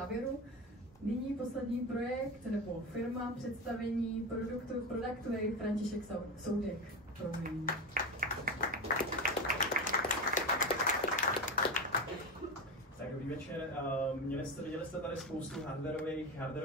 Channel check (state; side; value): normal; both; correlation 0.20